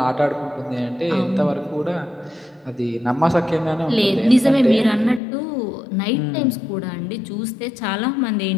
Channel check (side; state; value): right; drops out; at 5.2 s